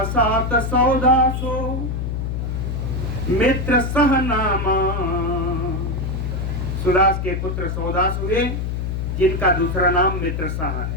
सौदासो मित्र सह नामा, सुदास के पुत्र सौदास हुए जिनका दूसरा नाम मित्रसाह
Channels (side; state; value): left; noise; hum, 2 dB below the sound